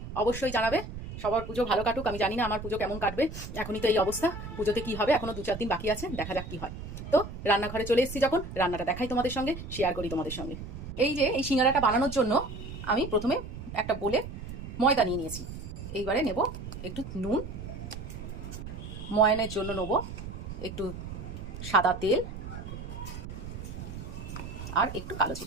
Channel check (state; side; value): noise; right; rumble, 9 dB below the sound